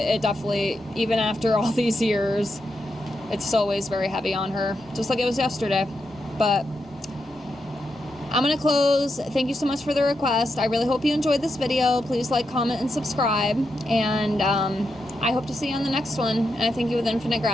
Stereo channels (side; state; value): both; normal; correlation 0.85